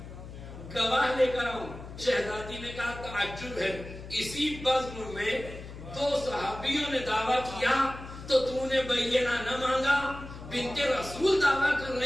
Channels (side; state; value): left; noise; hum, 13 dB below the sound